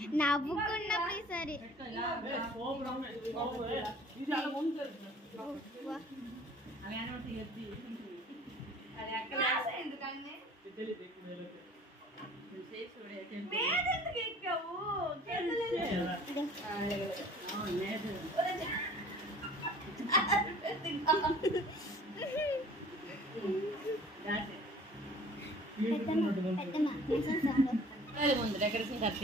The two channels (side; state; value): both; normal; correlation 0.49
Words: నవ్వుకున్నప్పుడు సరే ఇది అలా ఉంటుంది అది అక్కడ ఎందుకని మీద ఎందుకు ఎక్కావు? ముందు డెకరేషన్ కట్